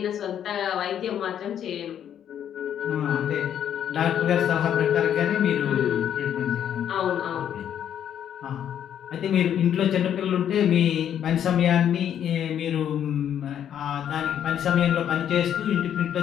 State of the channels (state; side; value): quieter; right; 9.6 dB